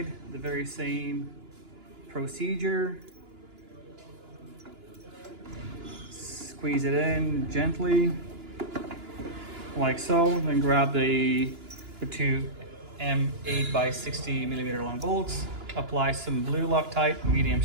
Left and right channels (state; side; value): late; left; 2.9 ms